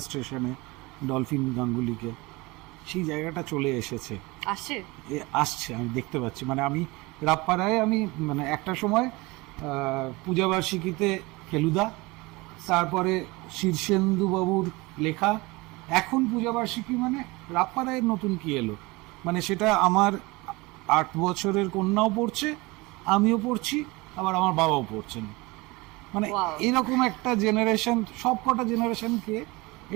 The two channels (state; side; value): quieter; left; 23.5 dB